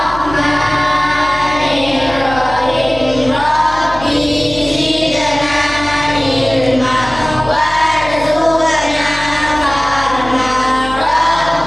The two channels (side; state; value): left; noise; hum, 13 dB below the sound